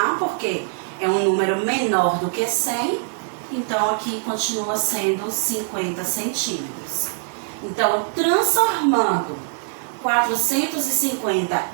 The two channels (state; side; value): silent; left; 63 dB below the other